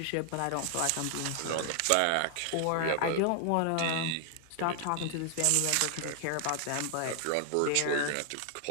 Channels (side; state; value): both; different; correlation 0.00